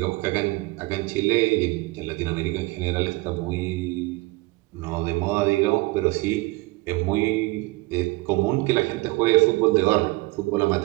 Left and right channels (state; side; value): quieter; left; 22.5 dB